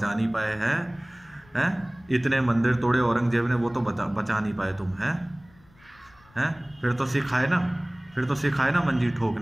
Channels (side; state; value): left; noise; rumble, 28 dB below the sound